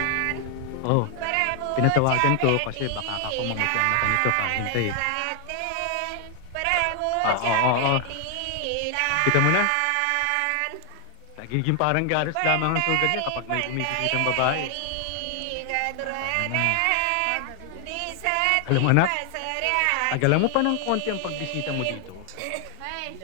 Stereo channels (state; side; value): different; both; correlation 0.00